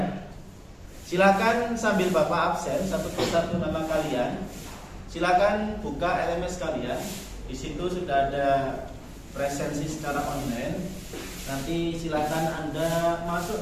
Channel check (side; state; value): both; identical; correlation 1.00